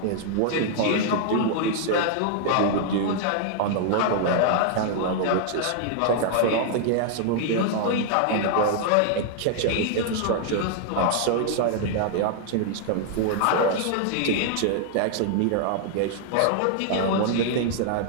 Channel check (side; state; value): both; different; correlation 0.00